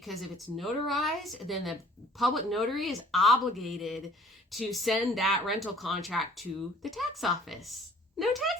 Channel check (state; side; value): normal; both; correlation 0.54